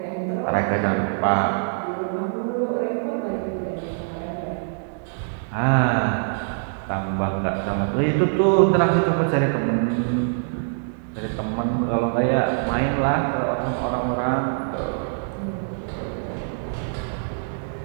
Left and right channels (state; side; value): silent; left; digital silence